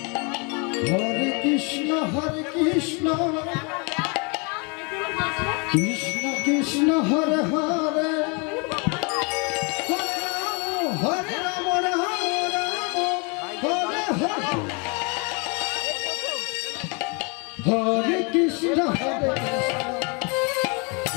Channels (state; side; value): quieter; right; 32.5 dB